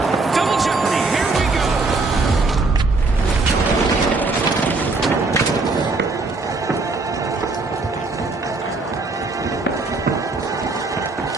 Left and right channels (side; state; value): left; quieter; 3.6 dB